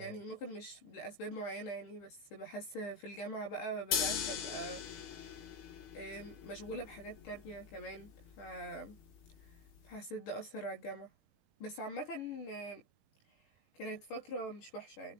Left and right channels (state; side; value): late; right; 6.5 ms